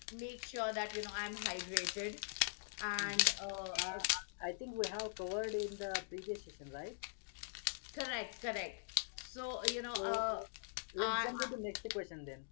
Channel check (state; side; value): silent; right; digital silence